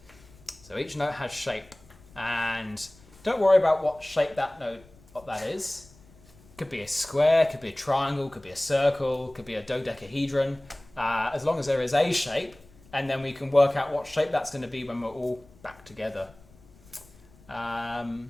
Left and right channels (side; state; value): left; noise; rumble, 25 dB below the sound